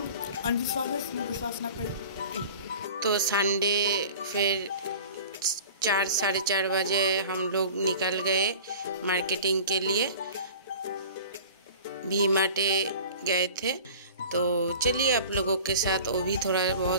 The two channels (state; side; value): inverted; both; correlation -0.40